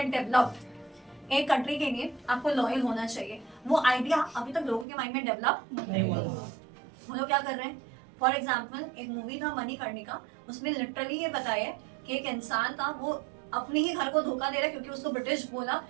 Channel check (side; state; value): left; drops out; at 4.9 s